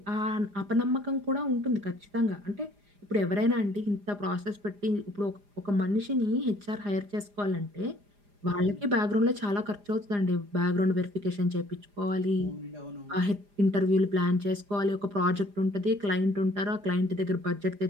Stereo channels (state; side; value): late; left; 4.9 ms